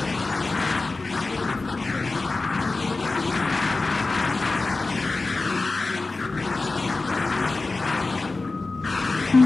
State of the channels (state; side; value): quieter; right; 3.5 dB